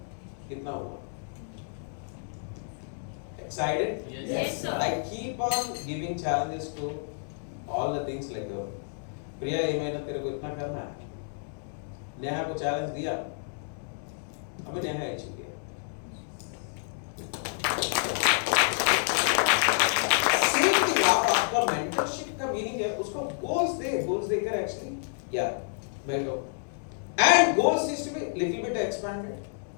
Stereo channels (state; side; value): silent; right; digital silence